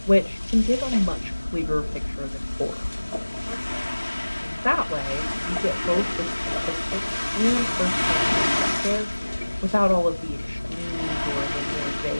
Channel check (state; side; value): inverted; both; correlation -1.00